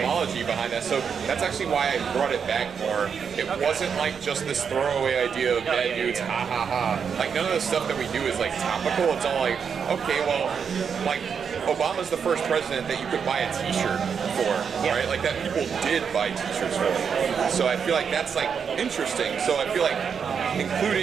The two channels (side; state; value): left; quieter; 6.7 dB